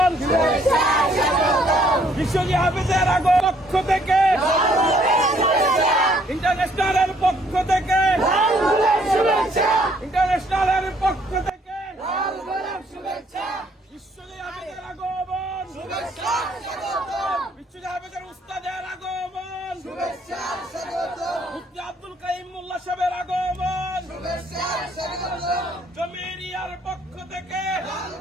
বিশ্বজয়ী হাফেজের আগমন পক্ষ থেকে, ইন্টারন্যাশনালের পক্ষ থেকে, ইন্টারন্যাশনালের পক্ষ থেকে বিশ্বজয়ী হাফেজের আগমন, বিশ্বজয়ী হাফেজের উস্তাদের আগমন, মুফতি আব্দুল কাইয়ুম মোল্লা সাহেবের আগমন, জমিরিয়ার পক্ষ থেকে,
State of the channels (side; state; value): both; normal; correlation 0.65